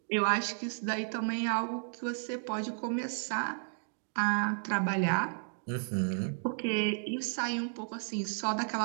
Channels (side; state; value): left; silent; digital silence